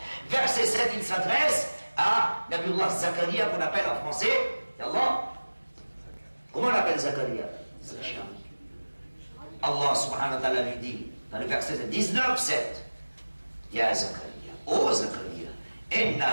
verset 7, il s'adresse à Nabiullah Zakaria, qu'on appelle en français, Allah. Comment on appelle Zakaria? Allah subhanahu wa ta'ala lui dit, dans le verset 19, 7, Ya Zakaria, ô Zakaria,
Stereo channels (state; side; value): inverted; both; correlation -1.00